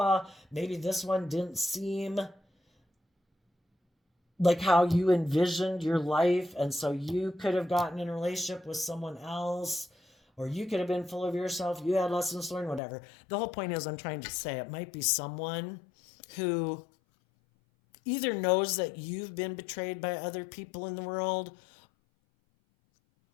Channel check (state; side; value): drops out; right; at 12.8 s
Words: maybe this one didn't seem like how you envisioned your life. And so you could have gotten in a relationship with someone else, or you could have been full of yourself. You had lessons learned, whatever. The whole point is, I'm trying to say it might be someone who either knows that you've been betrayed by other people in the world,